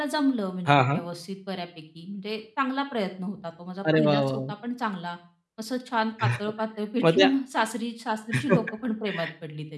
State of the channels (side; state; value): both; identical; correlation 1.00